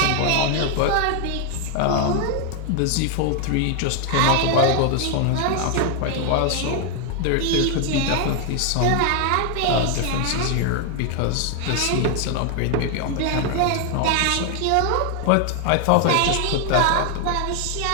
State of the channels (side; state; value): both; different; correlation 0.00